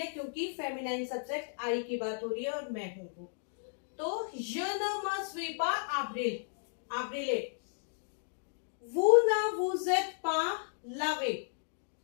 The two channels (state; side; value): silent; right; digital silence